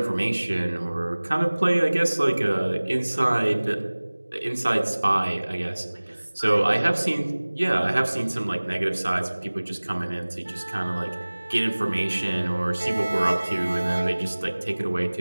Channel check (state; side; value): inverted; both; correlation -1.00